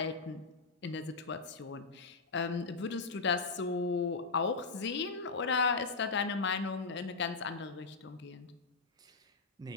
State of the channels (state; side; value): quieter; right; 4.4 dB